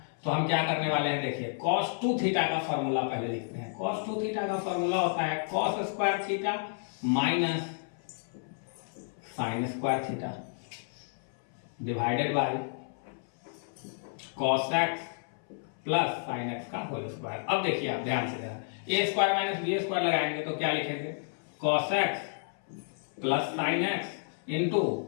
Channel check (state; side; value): silent; right; 57 dB below the other